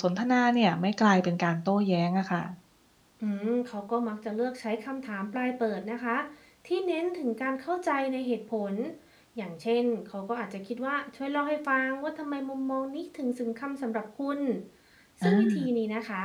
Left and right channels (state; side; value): identical; both; correlation 1.00